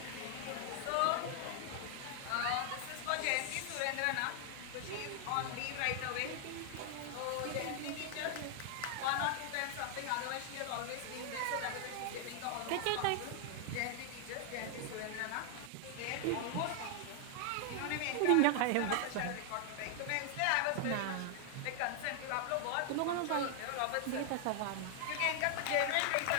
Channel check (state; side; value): different; both; correlation 0.00